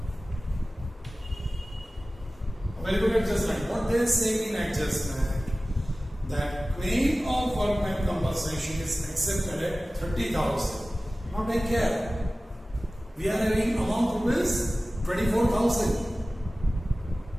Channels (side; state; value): both; normal; correlation 0.97